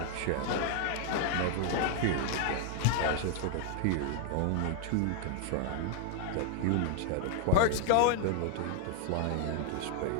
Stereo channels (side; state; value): both; different; correlation 0.00